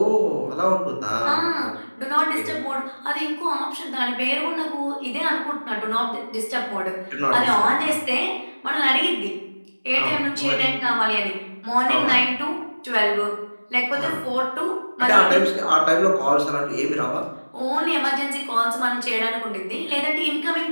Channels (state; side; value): inverted; both; correlation -1.00